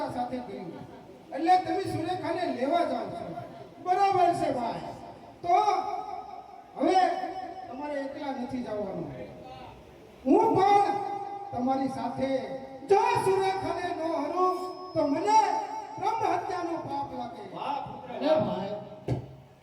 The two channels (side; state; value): both; identical; correlation 1.00